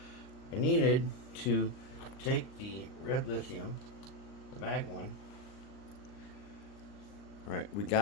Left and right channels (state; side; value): late; right; 39 ms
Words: I needed to take the red lithium, the mag one. Alright, we